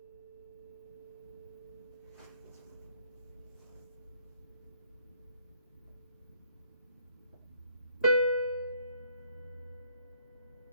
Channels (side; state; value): both; inverted; correlation -0.64